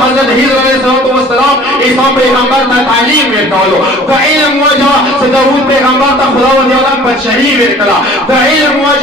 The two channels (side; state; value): both; normal; correlation 0.49